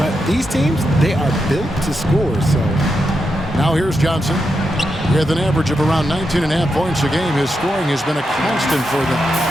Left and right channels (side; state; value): both; normal; correlation 0.85